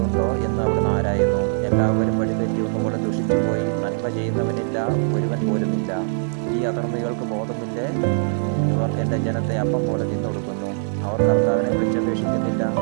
എന്ന് അവിടുന്ന് ആരായുന്നു. എല്ലാവരും വഴിതെറ്റി ഒന്നുകൂടെ ദുഷിച്ചുപോയി. നന്മ ചെയ്യുന്നവനില്ല, ഒരുവൻ പോലുമില്ല. ഈ അധർമ്മികൾക്ക് ബോധമില്ലേ? ഇവർ എൻ്റെ ജനത്തെ അപ്പം പോലെ തിന്നൊടുക്കുന്നു. അവർ കർത്താവിനെ വിളിച്ചപേക്ഷിക്കുന്നില്ല.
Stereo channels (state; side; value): silent; left; digital silence